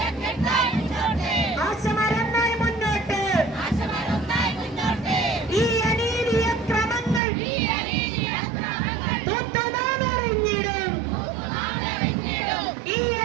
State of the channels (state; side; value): drops out; left; at 7.2 s